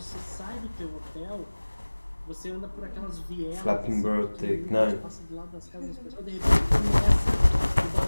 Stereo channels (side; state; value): both; inverted; correlation -1.00